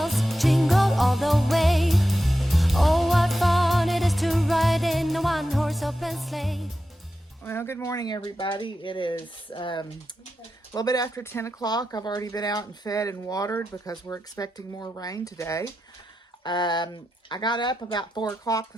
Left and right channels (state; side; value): normal; both; correlation 0.90